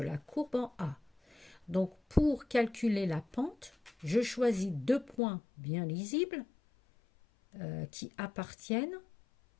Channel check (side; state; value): right; drops out; at 5.2 s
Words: courbe en A. Donc, pour calculer la pente, je choisis deux points bien lisibles qui appartiennent